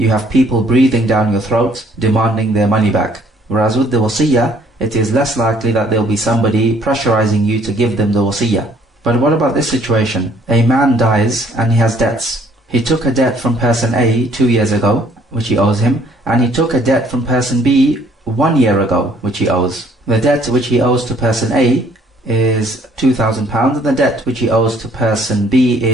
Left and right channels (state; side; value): normal; both; correlation 0.61